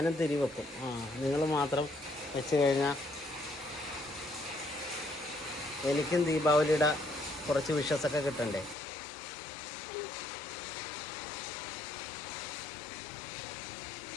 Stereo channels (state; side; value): drops out; right; at 8.8 s